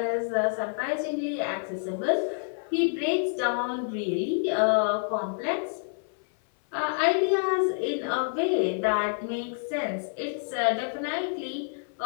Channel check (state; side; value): silent; right; 59 dB below the other